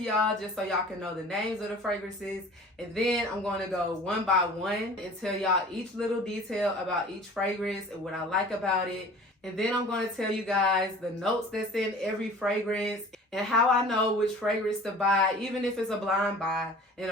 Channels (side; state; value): both; normal; correlation 0.44